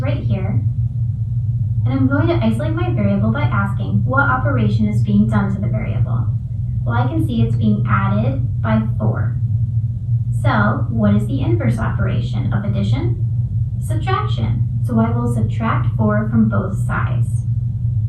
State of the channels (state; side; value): identical; both; correlation 1.00